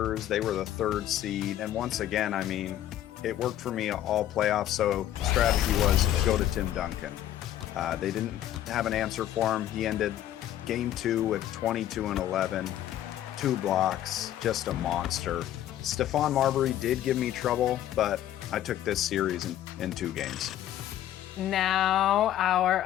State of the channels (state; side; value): quieter; right; 12.2 dB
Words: They were the 3rd seed. And once again, I mean, it worked for me all playoffs. So the strategy was go to Tim Duncan. They didn't have an answer for him. He ended game 2 with 22 and 11, 2 blocks, just a monster. Stephon Marbury did give me trouble, but I took this series in 2 games. Now our